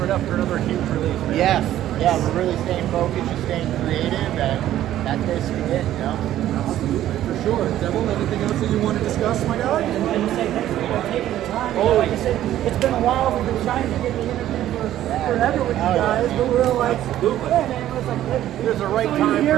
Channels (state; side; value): quieter; left; 12.7 dB